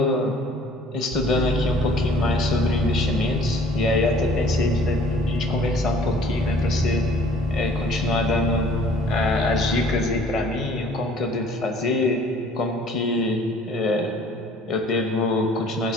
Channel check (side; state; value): both; normal; correlation 0.53